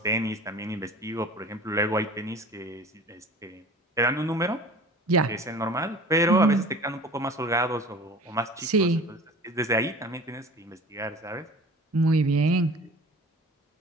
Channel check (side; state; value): both; normal; correlation 0.41